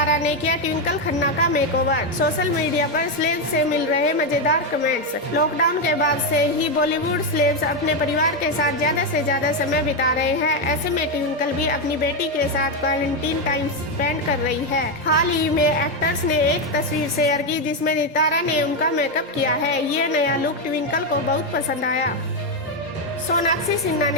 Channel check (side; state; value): both; normal; correlation 0.06